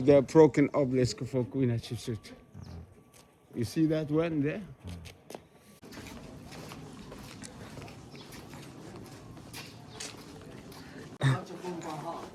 the broken obelisk for Queen Hatshepsut. You see that one there?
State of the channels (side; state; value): both; identical; correlation 1.00